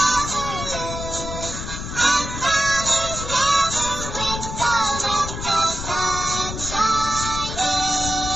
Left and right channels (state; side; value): noise; left; rumble, 7 dB below the sound